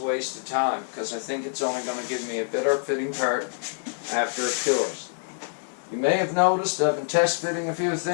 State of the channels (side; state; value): right; silent; digital silence